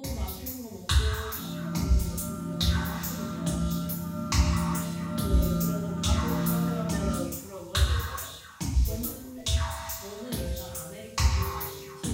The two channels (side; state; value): both; identical; correlation 1.00